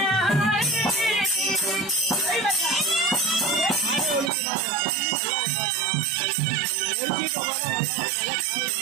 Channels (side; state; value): left; drops out; at 4.3 s